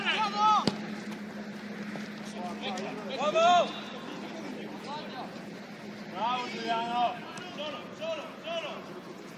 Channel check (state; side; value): identical; both; correlation 1.00